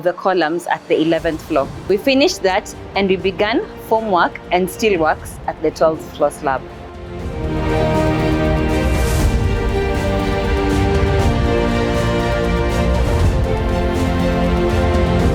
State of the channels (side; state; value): both; identical; correlation 1.00